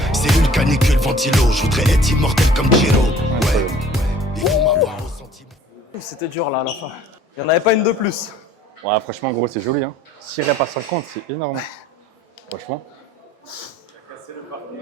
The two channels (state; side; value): normal; both; correlation 0.52